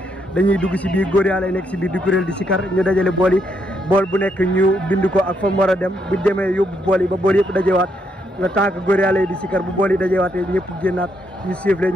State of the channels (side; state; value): both; normal; correlation 0.76